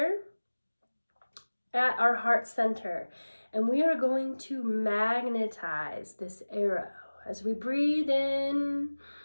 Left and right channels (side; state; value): both; inverted; correlation -1.00